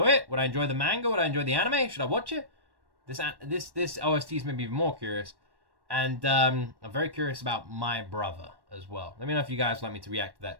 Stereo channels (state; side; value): late; left; 1.1 ms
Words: it? Would I enjoy the manga? Would I enjoy the anime? Should I watch it? This OST's made me even more curious. And I'm very curious about my brother as well. Let me know if you guys would like me to react to